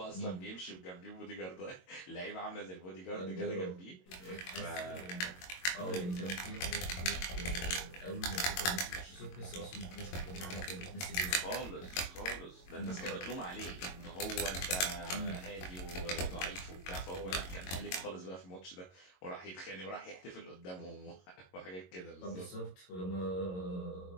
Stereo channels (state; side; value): late; right; 22 ms